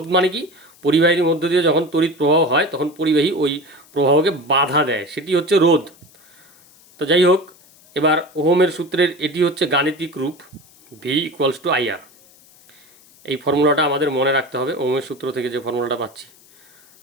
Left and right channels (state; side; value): noise; left; hiss, 27 dB below the sound